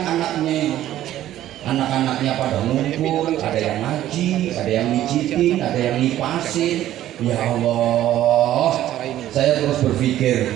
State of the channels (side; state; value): left; quieter; 13.1 dB